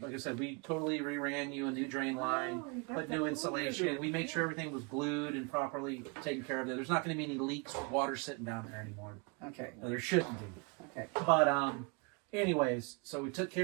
I said, we totally reran you a new drain line, put new insulation. We made sure everything was glued and properly taken care of. There's not going to be any leaks or water sitting down there anymore. Okay. No, there shouldn't be. Okay. But anyways, so we took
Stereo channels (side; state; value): left; quieter; 32.6 dB